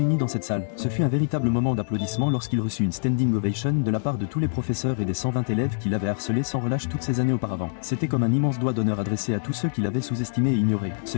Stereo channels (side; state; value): right; silent; digital silence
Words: dans cette salle. Ce fut un véritable moment d'applaudissement lorsqu'il reçut une standing ovation de la part de tous les professeurs et des 120 élèves qui l'avaient harcelé sans relâche toutes ces années auparavant. C'était comme un immense doigt d'honneur adressé à tous ceux qui l'avaient sous-estimé et ignoré. Ce